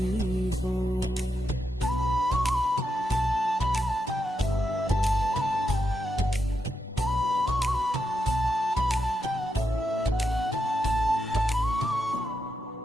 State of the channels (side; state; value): both; normal; correlation 0.84